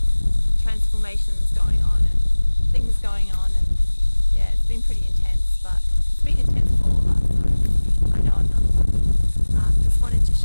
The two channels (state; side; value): inverted; both; correlation -1.00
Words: transformations going on and things going on, and yeah, it's been pretty intense, but it's been intense for all of us, so I know I'm not alone. Just wanted to